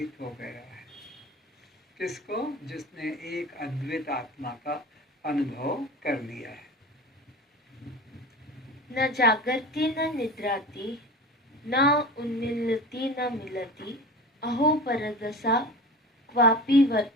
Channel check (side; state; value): both; normal; correlation 0.34